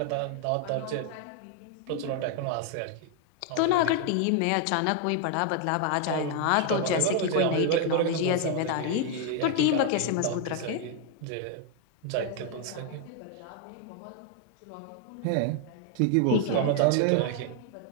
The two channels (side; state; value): both; different; correlation 0.00